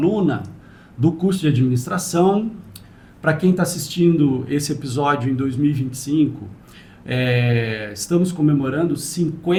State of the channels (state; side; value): identical; both; correlation 1.00